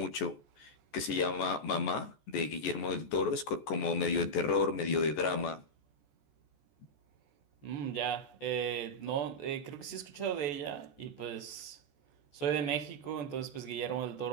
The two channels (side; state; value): right; late; 14 ms